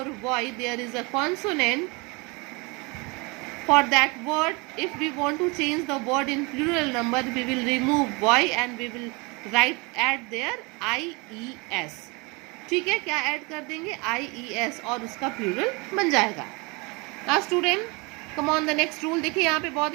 y there is a consonant for that word, if we want to change the word in plural number, we will remove y and we will add there ies. ठीक है, क्या add कर देंगे, ies, और उसका plural बन जाएगा. Now student, come on the next rule. देखिए यहाँ पे बहुत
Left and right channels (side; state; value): left; quieter; 28.1 dB